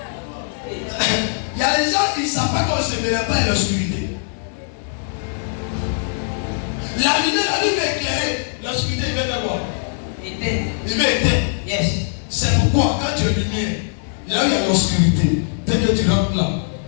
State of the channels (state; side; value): silent; right; 65 dB below the other